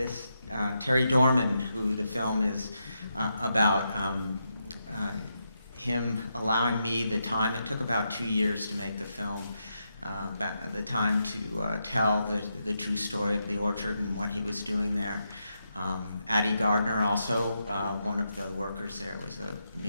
Terry Dorman, who the film is about, him allowing me the time. It took about 2 years to make the film, the time to tell the true story of the orchard and what he was doing there. Addie Gardner, also one of the workers there, was a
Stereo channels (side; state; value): both; inverted; correlation -0.83